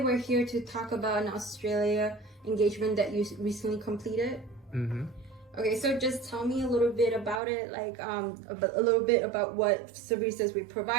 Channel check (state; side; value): drops out; left; at 7.4 s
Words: we're here to talk about an Australia engagement that you recently completed. Mm-hmm. Okay, so just tell me a little bit about it, like a little bit about what services we